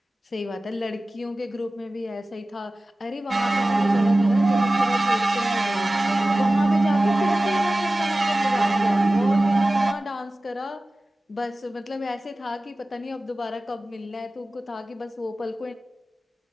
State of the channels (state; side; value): normal; both; correlation 0.96